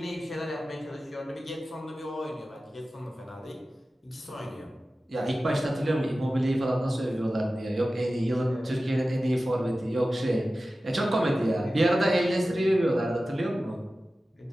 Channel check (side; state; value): both; normal; correlation 0.95